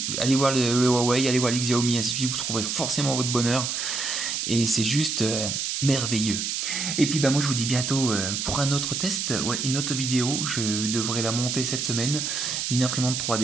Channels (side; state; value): right; noise; hiss, 2 dB below the sound